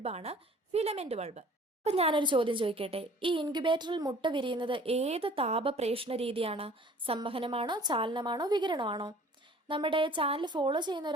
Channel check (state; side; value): normal; both; correlation 0.50